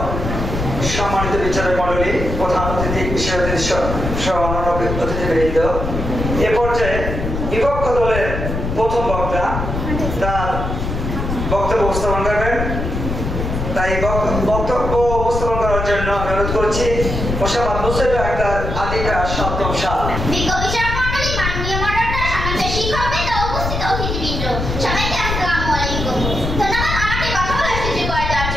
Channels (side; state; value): left; noise; rumble, 3 dB below the sound